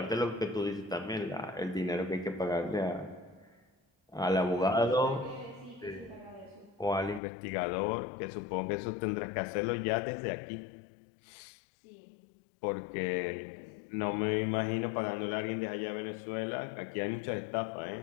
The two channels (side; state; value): right; drops out; at 7.2 s